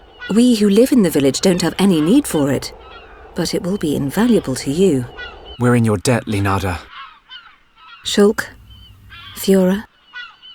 We who live in the village don't have any need for it, but it will be invaluable to you. We're in your debt, Leonarda. Shulk, Fiora,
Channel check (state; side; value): identical; both; correlation 1.00